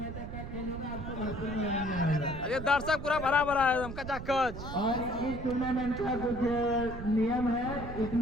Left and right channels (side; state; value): right; noise; rumble, 8 dB below the sound